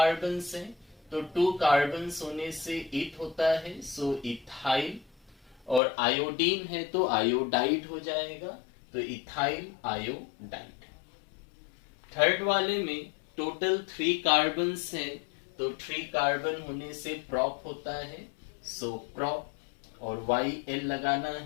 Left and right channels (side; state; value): right; drops out; at 5.8 s